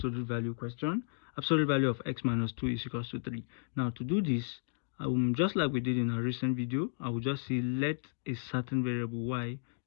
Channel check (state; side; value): silent; right; digital silence